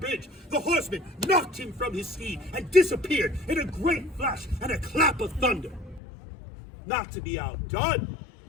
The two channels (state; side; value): drops out; right; at 6.0 s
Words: the horseman knocked him from his steed and disappeared in a great flash and a clap of thunder. Not to be outdone,